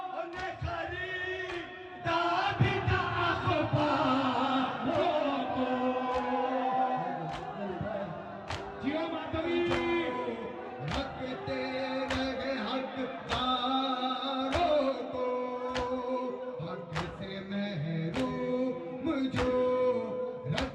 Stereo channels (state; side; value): identical; both; correlation 1.00